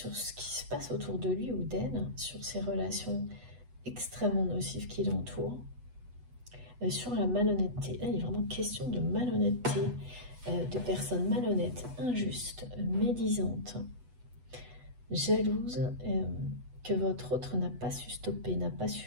ce qui se passe autour de lui ou d'elle, sur ces relations extrêmement nocives qui l'entourent, sur la malhonnêteté. Là, il est vraiment question de malhonnêteté, de personnes malhonnêtes, injustes, médisantes, jalouses, que votre autre n'a pas su stopper, n'a pas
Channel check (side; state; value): left; late; 8.1 ms